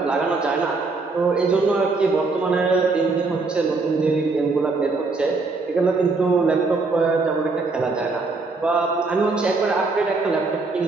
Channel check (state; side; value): quieter; left; 3.8 dB